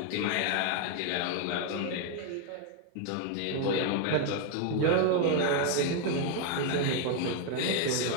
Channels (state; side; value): different; both; correlation 0.01